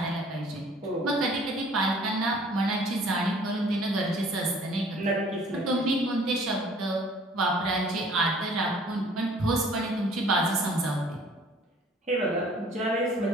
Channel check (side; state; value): both; normal; correlation 0.54